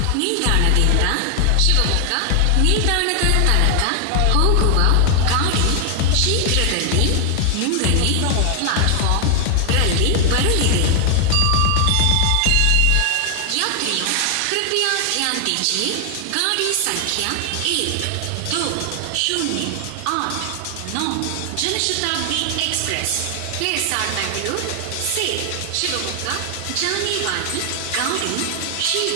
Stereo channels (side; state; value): both; different; correlation 0.00